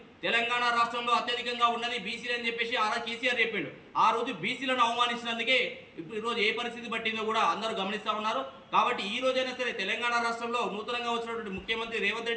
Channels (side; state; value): both; identical; correlation 1.00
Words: తెలంగాణ రాష్ట్రంలో అత్యధికంగా ఉన్నది బీసీలు అని చెప్పేసి కేసీఆర్ చెప్పిండు. ఆ రోజు బీసీలను అవమానించినందుకే ఇప్పుడు ఈరోజు ఏ పరిస్థితి పట్టిందో కూడా అందరూ గమనిస్తూ ఉన్నారు. కాబట్టి ఈ రోజైనా సరే తెలంగాణ రాష్ట్రంలో నూతనంగా వచ్చినటువంటి ముఖ్యమంత్రి రేవంత్